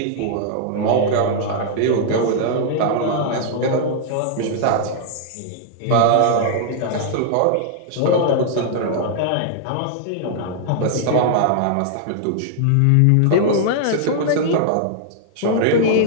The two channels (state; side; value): different; both; correlation -0.01